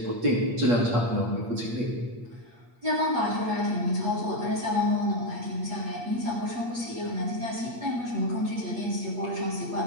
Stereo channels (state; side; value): late; left; 8.5 ms